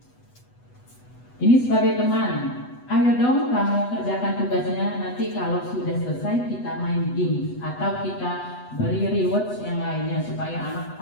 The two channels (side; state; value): right; late; 8.1 ms